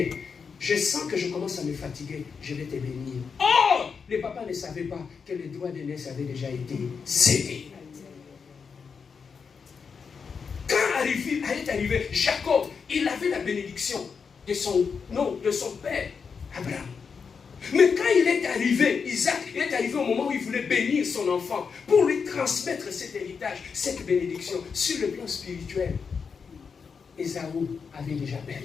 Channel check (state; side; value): quieter; right; 5.8 dB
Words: je sens que je commence à me fatiguer, je vais te bénir. Oh! Les papas ne savaient pas que les droits d'aînesse avaient déjà été cédés. Quand est arrivé Jacob, il avait la bénédiction de son père, Abraham. Mais quand il est arrivé, Isaac, il est arrivé au moment où il voulait bénir son enfant pour lui transmettre cet héritage, cette bénédiction sur le plan spirituel. Ésaü avait déjà